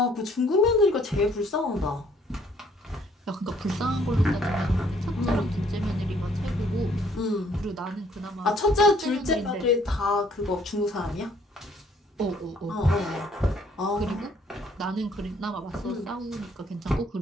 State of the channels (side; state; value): both; normal; correlation 0.63